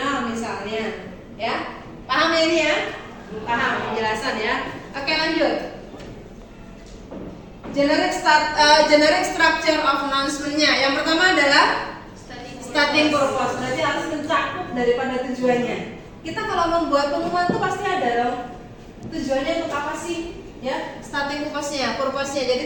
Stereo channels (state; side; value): identical; both; correlation 1.00